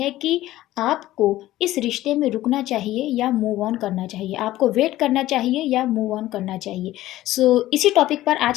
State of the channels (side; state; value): right; quieter; 15.4 dB